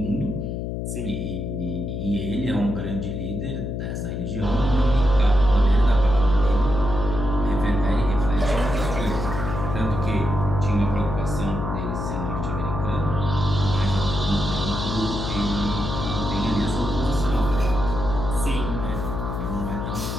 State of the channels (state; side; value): noise; left; hum, 4 dB below the sound